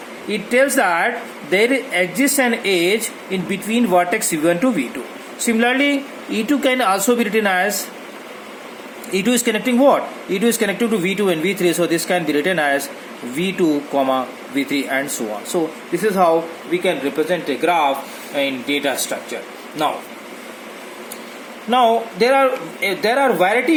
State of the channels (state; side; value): identical; both; correlation 1.00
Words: It tells that there exists an edge in between vertex V1 to V2. Similarly, E2 can also be written as, E2 is connecting what? E2 is connected to V2 and V3, so this can be written as V2 comma V3 and so on. So this is how we can represent a graph in data structure. Now there are